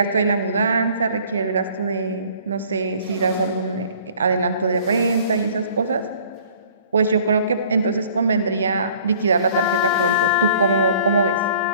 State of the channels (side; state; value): both; inverted; correlation -0.53